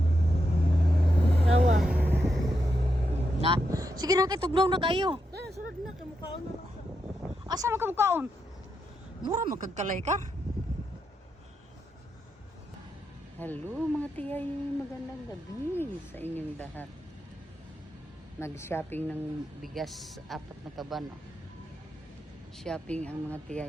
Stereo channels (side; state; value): both; normal; correlation 0.84